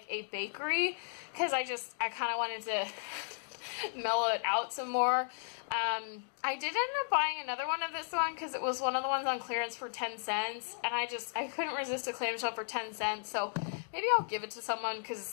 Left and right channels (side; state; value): right; silent; digital silence